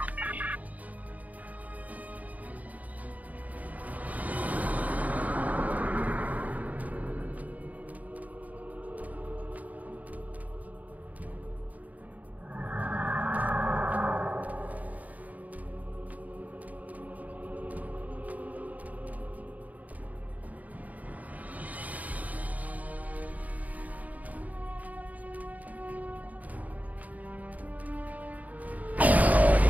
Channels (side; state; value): left; late; 0.076 ms